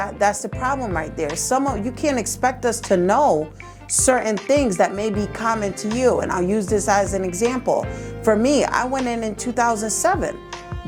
that's the problem right there. You can't expect us to know certain things that may be common to you. And I'll use this as an example. For me, I went in 2007.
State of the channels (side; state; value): both; identical; correlation 1.00